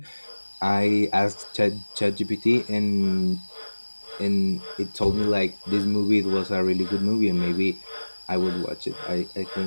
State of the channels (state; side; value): inverted; both; correlation -1.00